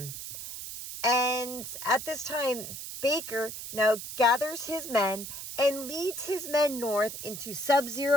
And at this time, Baker now gathers his men and leads his men north into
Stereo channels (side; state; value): right; noise; hiss, 9 dB below the sound